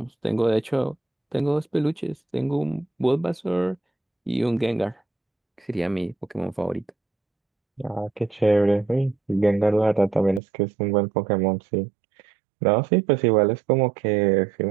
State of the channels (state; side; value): drops out; left; at 10.4 s